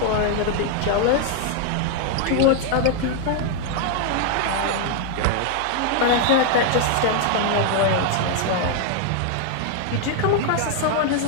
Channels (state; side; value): different; both; correlation 0.00